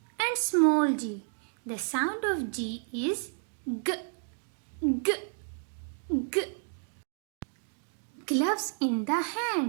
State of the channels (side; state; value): left; silent; digital silence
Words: and small g. The sound of G is G, G, G. Gloves in the